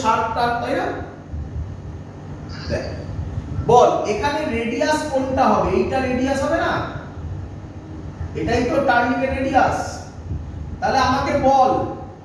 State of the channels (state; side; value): identical; both; correlation 1.00